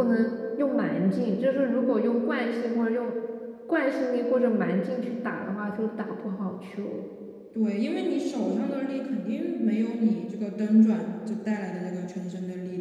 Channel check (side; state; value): both; identical; correlation 1.00